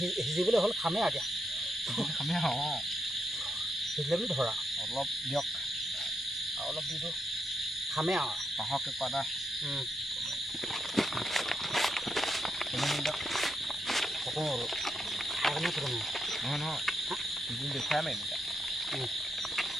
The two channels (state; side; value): normal; both; correlation 0.81